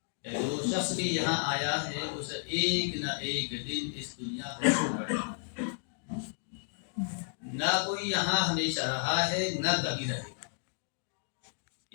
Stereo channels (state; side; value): silent; right; digital silence